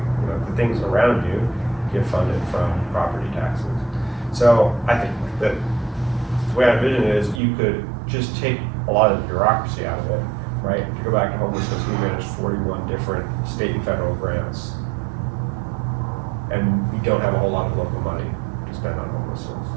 things around you, get funded from property taxes. So I think that the way I envision it is you could just take a lot of the bureaucracy out of it, right? If you go back to homelessness, we manage 41 different state and federal grants. And we don't have a whole lot of local money to spend on homelessness.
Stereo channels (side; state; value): left; drops out; at 7.4 s